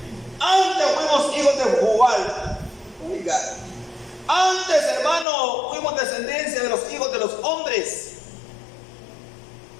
Antes fuimos hijos de Jubal. Oiga, antes, hermano, fuimos descendencia de los hijos de los hombres.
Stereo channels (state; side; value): drops out; right; at 5.2 s